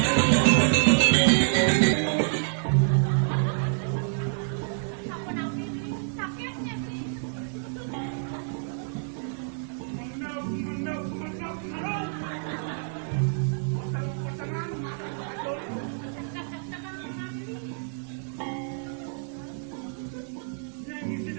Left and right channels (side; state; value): left; silent; digital silence